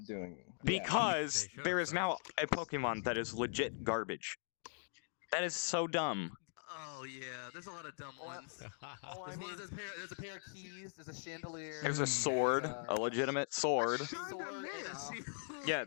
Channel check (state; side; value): silent; right; digital silence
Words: doing because They should there have is now a Pokemon that is legit garbage. That is so dumb. Oh yeah, there's a lot of dumb ones. Oh, I mean, There's a pair of keys. There's a chandelier. There's a sword, a legitimate sword. sword and a shield. Yeah,